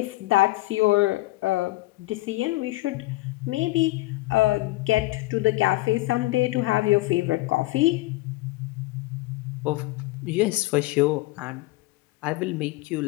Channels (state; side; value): quieter; right; 19.6 dB